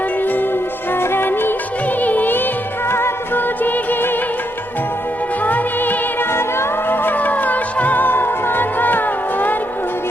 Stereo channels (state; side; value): noise; left; rumble, 27 dB below the sound